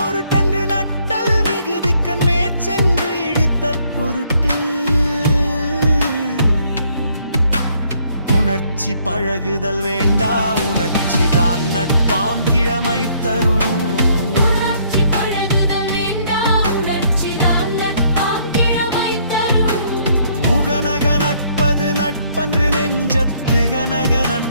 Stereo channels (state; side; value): inverted; both; correlation -0.67